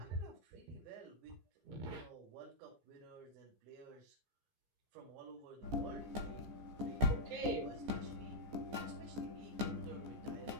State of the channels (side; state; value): left; late; 14 ms